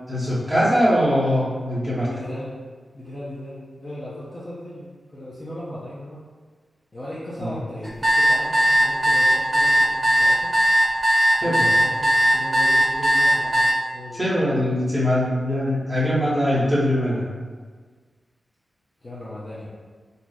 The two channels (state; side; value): normal; both; correlation 0.95